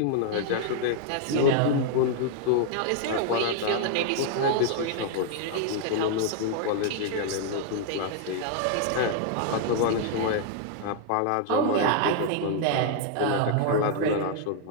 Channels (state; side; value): different; both; correlation -0.01